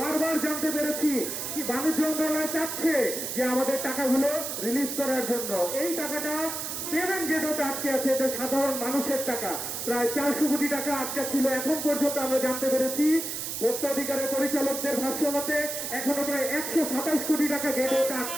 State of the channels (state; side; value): noise; right; hiss, 4 dB below the sound